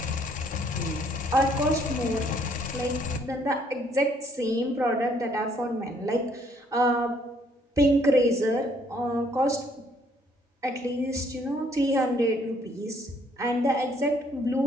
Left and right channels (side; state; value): both; normal; correlation 0.65